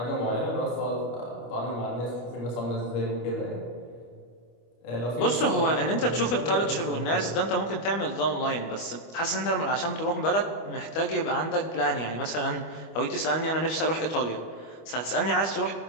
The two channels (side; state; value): right; late; 25 ms